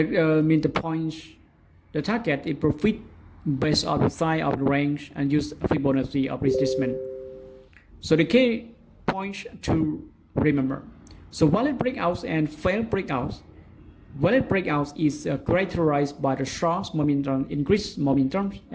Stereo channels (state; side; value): identical; both; correlation 1.00